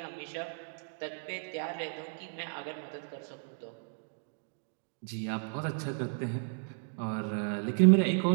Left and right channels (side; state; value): left; silent; 55 dB below the other